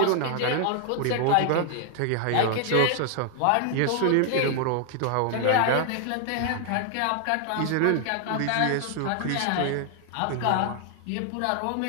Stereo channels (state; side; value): different; both; correlation 0.00